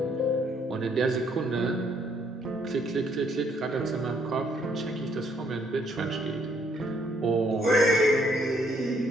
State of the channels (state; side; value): normal; both; correlation 0.68